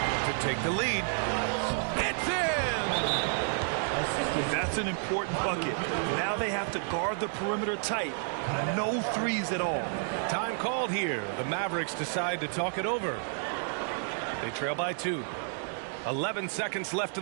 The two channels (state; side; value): silent; left; 57 dB below the other